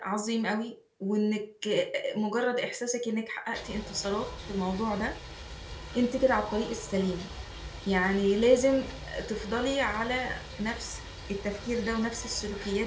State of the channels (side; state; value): both; identical; correlation 1.00